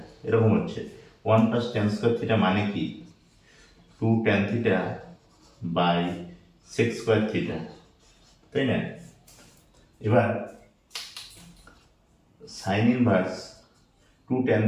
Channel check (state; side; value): identical; both; correlation 1.00